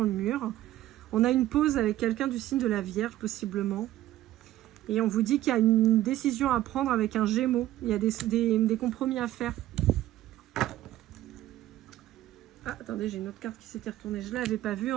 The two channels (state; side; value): quieter; left; 14.3 dB